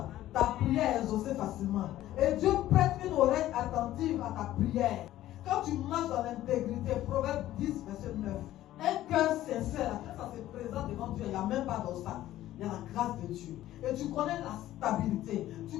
ta prière est exaucée facilement. Et Dieu prête une oreille attentive à ta prière. Quand tu marches dans l'intégrité, Proverbe 10, verset 9, un cœur sincère, quand ça se présente devant Dieu, il n'y a même pas d'obstacle. Il y a la grâce de Dieu. Et tu connais la stabilité.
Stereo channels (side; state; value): right; quieter; 14.1 dB